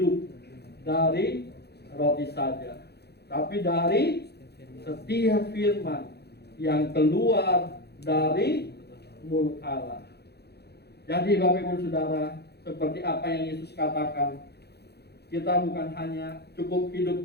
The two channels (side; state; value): right; late; 0.48 ms